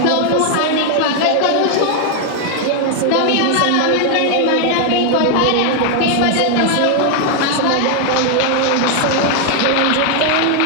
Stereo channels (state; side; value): different; both; correlation 0.00